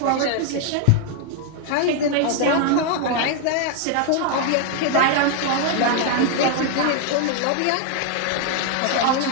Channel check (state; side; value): different; both; correlation 0.00